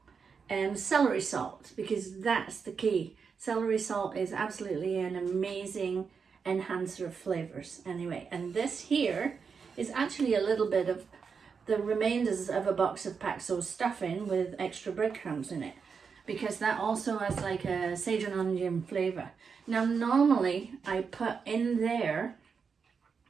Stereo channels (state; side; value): quieter; left; 5.8 dB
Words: and celery salt, because that's the key. Celery salt is absolutely an amazing enhancer of flavors. Anyway, and this here is actually a little bit of the remainders of a box of Paxo stuffing with extra breadcrumbs in it, because that also has like a sage and onion flavor. Now normally I put in there